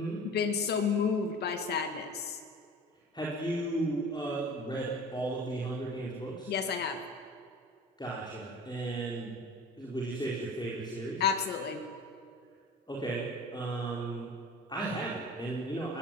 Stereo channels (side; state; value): both; normal; correlation 0.40